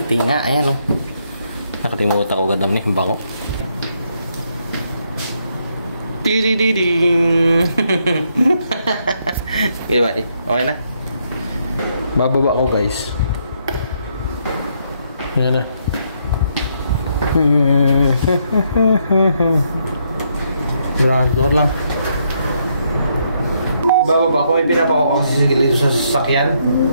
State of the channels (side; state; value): both; inverted; correlation -0.75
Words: nga. Ayan o. Nakalimutan ko gandam niya. Bako. Tidididing. Diba eh? Okay na. Bababa ko guys. Ayan na. Ground floor lang. Bababa ko, pinapa ko kasi dito sa sasakyan.